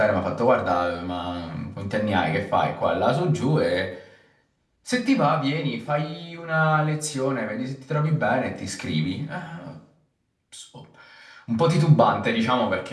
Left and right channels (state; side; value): identical; both; correlation 1.00